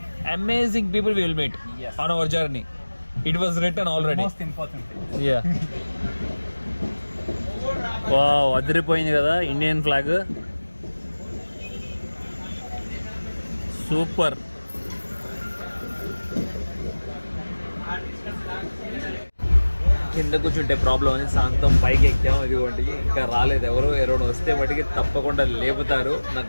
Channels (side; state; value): both; inverted; correlation -1.00